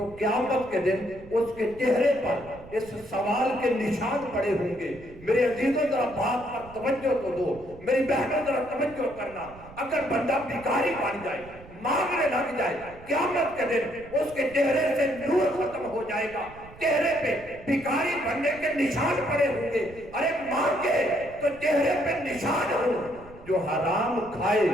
قیامت کے دن اس کے چہرے پر اس سوال کے نشان پڑے ہوں گے۔ میرے عزیزوں ذرا بات پر توجہ تو دو، میری بہنوں ذرا توجہ کرنا۔ اگر بندہ بھکاری بن جائے، مانگنے لگ جائے، قیامت کے دن اس کے چہرے سے نور ختم ہو جائے گا، چہرے پہ بھکاری بننے کے نشان پڑے ہوں گے۔ ارے مانگے تو چہرے پہ نشان ہو، جو حرام کھائے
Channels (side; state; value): right; noise; rumble, 20 dB below the sound